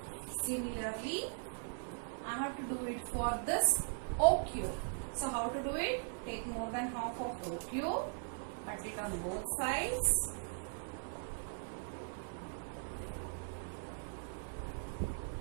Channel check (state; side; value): silent; left; 51 dB below the other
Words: Similarly, I have to do it for this OQ. So how to do it? Take more than half of OQ, cut it on both sides.